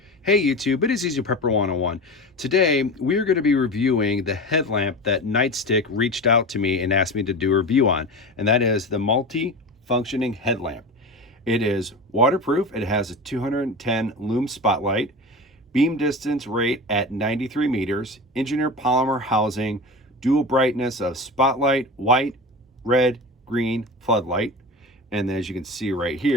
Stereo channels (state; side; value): normal; both; correlation 0.29